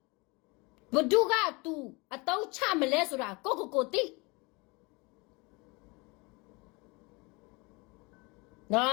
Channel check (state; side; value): quieter; right; 26.9 dB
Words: ဘဒုက तू အတုံးချမလဲဆိုတာကိုတိနော